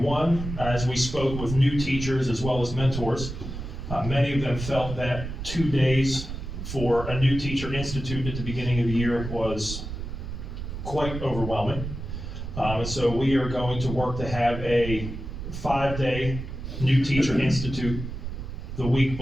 one, as we spoke with new teachers as well as mentors, many of them felt that 2 days for a new teacher institute at the beginning of the year was quite overwhelming. And so we are going to work to have a 5-day new teacher institute the week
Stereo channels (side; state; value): right; noise; rumble, 7 dB below the sound